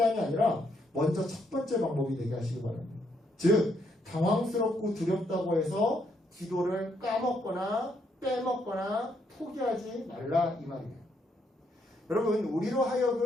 아니라 먼저 첫 번째 방법이 되게 하시기 바랍니다. 즉 당황스럽고 두렵다고 해서 기도를 까먹거나 빼먹거나 포기하지 말라 이 말이에요. 여러분 우리로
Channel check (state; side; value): normal; both; correlation 0.74